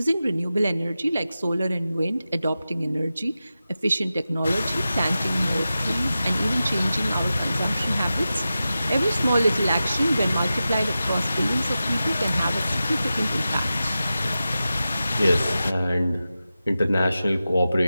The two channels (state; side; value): inverted; both; correlation -0.93